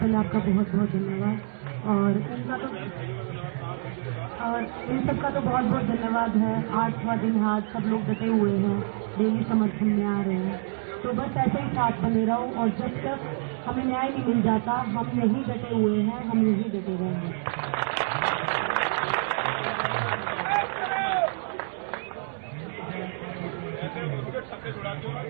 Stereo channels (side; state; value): left; silent; digital silence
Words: आपका बहुत बहुत धन्यवाद, और इन सबका तो बहुत बहुत धन्यवाद है। 8वां दिन है, आज सब लोग डटे हुए हैं, डेली समर्थन में आ रहे हैं, तो बस ऐसे ही साथ बने रहो, और जब तक हमें न्याय नहीं मिल जाता हम यही डटे हुए हैं, हम यही डटे रहेंगे।